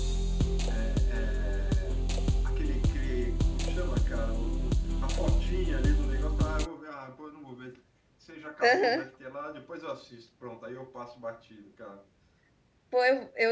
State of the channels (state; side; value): identical; both; correlation 1.00